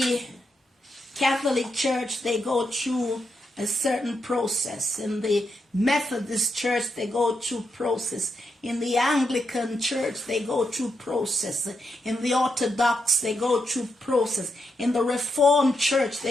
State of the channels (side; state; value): both; normal; correlation 0.82